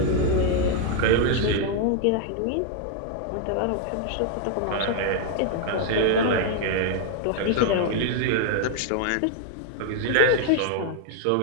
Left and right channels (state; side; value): different; both; correlation 0.00